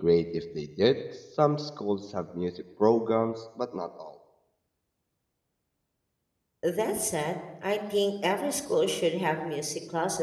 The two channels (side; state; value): both; identical; correlation 1.00